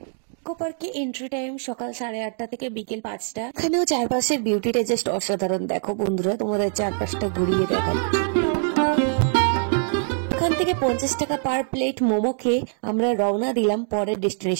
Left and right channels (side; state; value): left; silent; 63 dB below the other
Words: ইকো পার্কে এন্ট্রি টাইম সকাল 8:30 থেকে বিকেল 5টা। এখানেও চারপাশের বিউটিটা জাস্ট অসাধারণ। দেখো বন্ধুরা, তোমাদের চারপাশটা ঘুরিয়ে দেখাচ্ছি। এখান থেকে 50 টাকা পার প্লেট মোমো খেয়ে আমরা রওনা দিলাম পরের